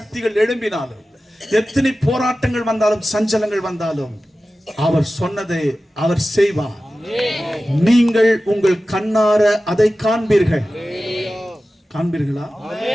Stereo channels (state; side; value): normal; both; correlation 0.95